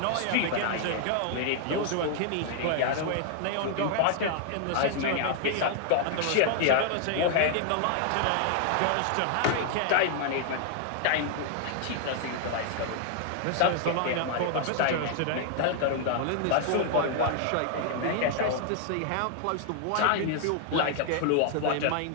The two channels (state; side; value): different; both; correlation 0.00